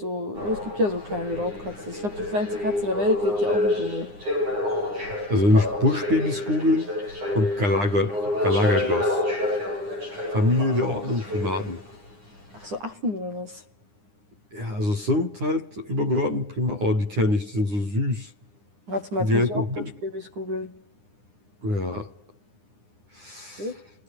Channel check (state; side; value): late; left; 9.8 ms